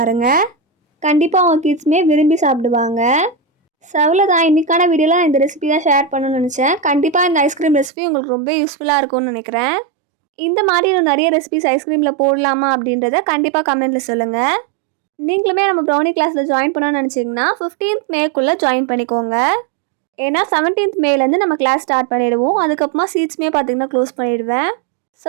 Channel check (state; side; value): drops out; left; at 7.9 s